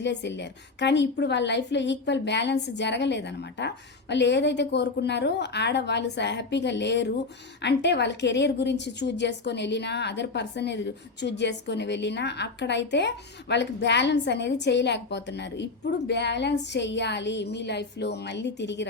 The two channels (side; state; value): right; quieter; 3.8 dB